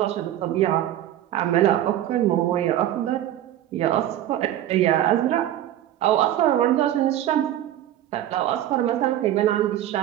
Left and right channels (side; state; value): left; quieter; 12.5 dB